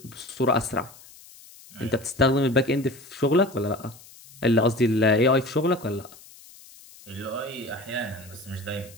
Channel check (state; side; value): noise; left; hiss, 22 dB below the sound